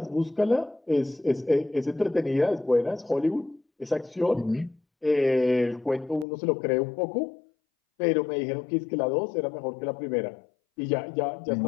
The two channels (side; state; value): right; drops out; at 6.2 s